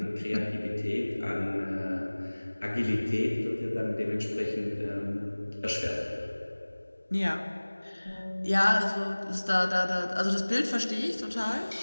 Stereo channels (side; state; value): both; inverted; correlation -1.00